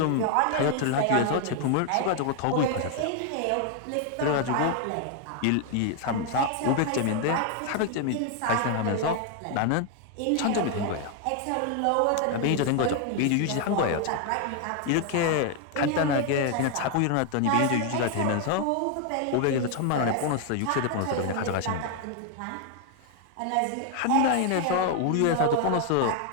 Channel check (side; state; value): both; different; correlation 0.00